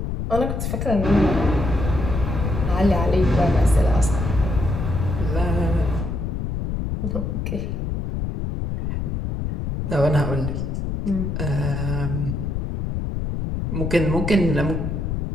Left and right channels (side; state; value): left; noise; rumble, 2 dB below the sound